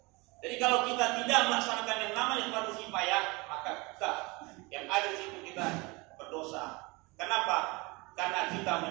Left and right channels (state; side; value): quieter; left; 25.6 dB